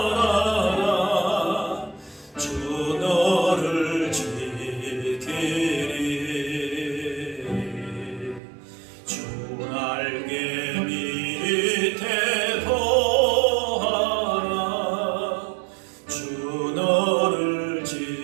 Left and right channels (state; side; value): drops out; left; at 8.4 s